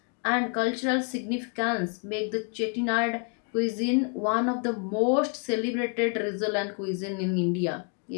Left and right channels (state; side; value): quieter; right; 38.0 dB